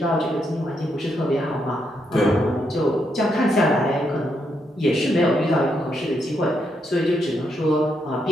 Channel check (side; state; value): both; normal; correlation 0.79